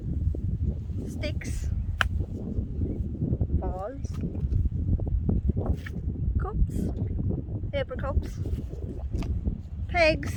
Sticks, balls, cups, paper cups, pegs,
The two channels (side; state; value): both; identical; correlation 1.00